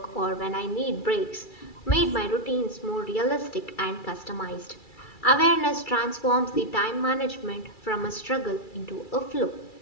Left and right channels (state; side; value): late; right; 2.3 ms